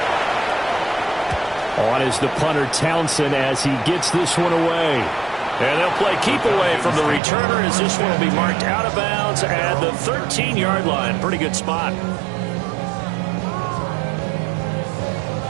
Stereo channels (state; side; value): drops out; left; at 7.2 s